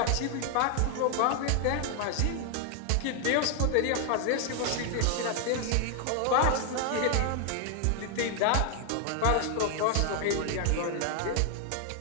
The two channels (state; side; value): different; both; correlation 0.00